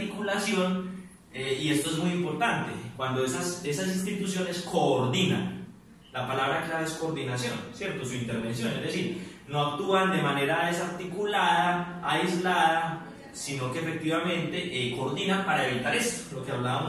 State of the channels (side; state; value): both; identical; correlation 1.00